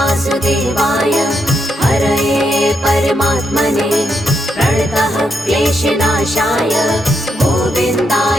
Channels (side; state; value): both; normal; correlation 0.80